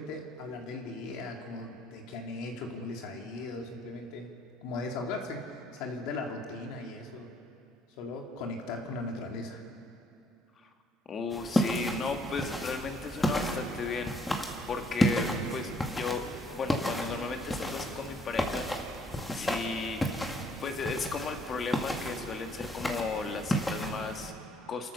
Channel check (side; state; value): both; normal; correlation 0.65